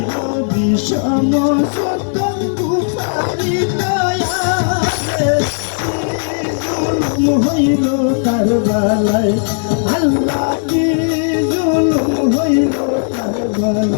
বিষম সত্য কুফারি দয়ালে জুলুম হইল কারবালায় আল্লাহ কি জুলুম হইল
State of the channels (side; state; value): right; silent; digital silence